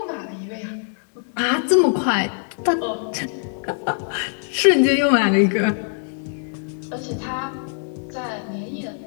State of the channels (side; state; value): right; silent; 64 dB below the other